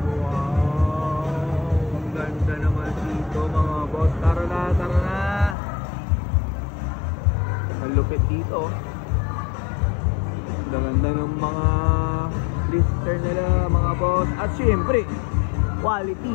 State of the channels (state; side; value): drops out; right; at 5.6 s